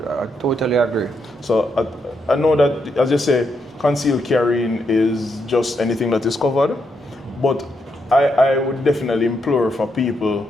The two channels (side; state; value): both; normal; correlation 0.80